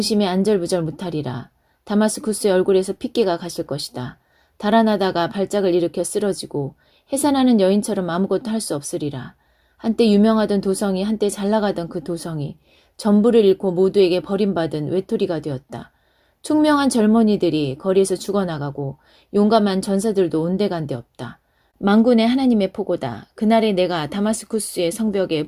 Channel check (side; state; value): both; identical; correlation 1.00